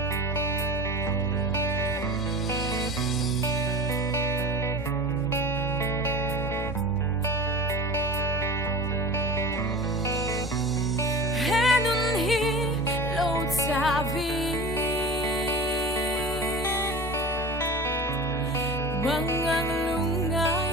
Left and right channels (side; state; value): both; normal; correlation 0.35